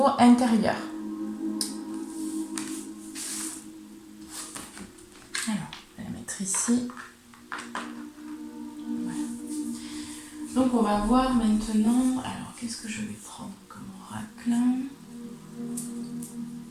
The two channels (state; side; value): identical; both; correlation 1.00